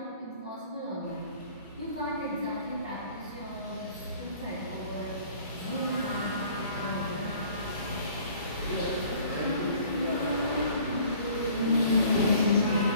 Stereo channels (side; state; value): both; inverted; correlation -0.53